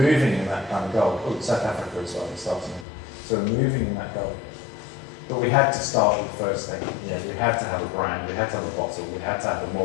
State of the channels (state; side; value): drops out; right; at 2.9 s